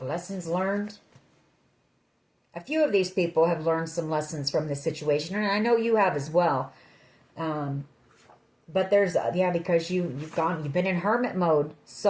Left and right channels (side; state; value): both; identical; correlation 1.00